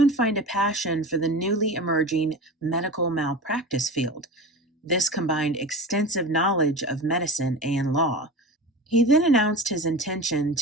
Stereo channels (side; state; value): both; normal; correlation 0.30